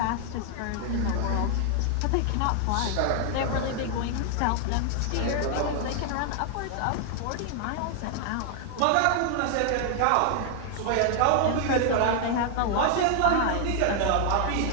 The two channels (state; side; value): different; both; correlation 0.00